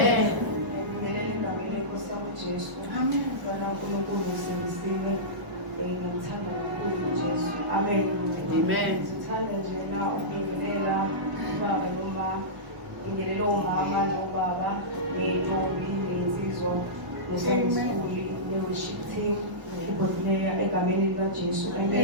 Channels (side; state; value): left; late; 1.0 ms